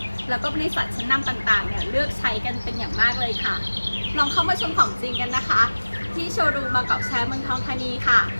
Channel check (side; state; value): both; inverted; correlation -1.00